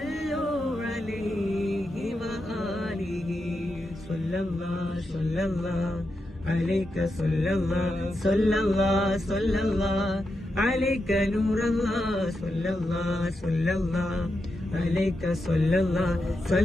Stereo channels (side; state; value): both; normal; correlation 0.87